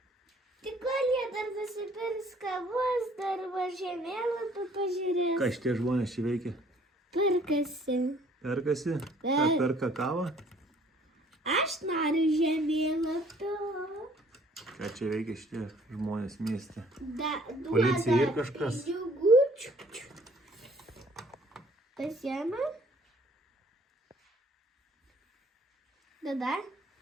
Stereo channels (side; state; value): both; normal; correlation 0.58